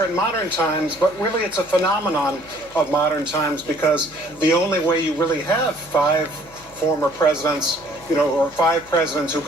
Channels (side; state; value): left; noise; hum, 25 dB below the sound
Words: in modern times, but really it's a phenomenon of modern times, because the only way you really have five former presidents, you know, or five presidents who